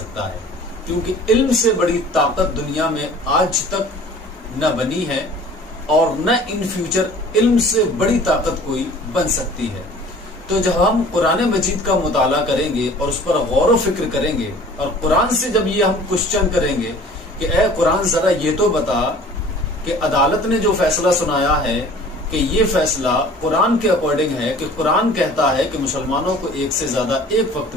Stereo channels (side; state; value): both; normal; correlation 0.47